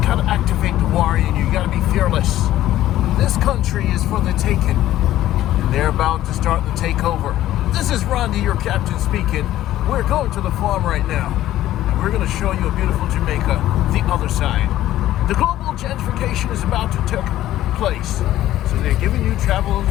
gotta activate the warrior in you. You gotta be fearless. This country is for the taking, and they're about to start the takeover. This is Randy, your captain, speaking. We're going to the farm right now, and we're going to show you a beautiful Jamaica, the other side. The global gentrification is about to take place, so they're giving you travel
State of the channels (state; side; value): quieter; right; 13.8 dB